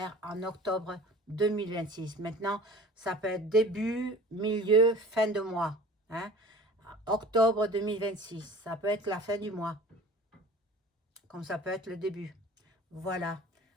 en octobre 2026. Maintenant, ça peut être début, milieu, fin de mois. Hein? Octobre 2026, ça peut être la fin du mois. Comme ça peut être le début. Voilà.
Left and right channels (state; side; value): normal; both; correlation 0.44